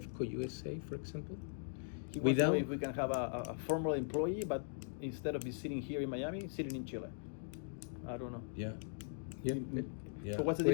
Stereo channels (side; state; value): right; silent; digital silence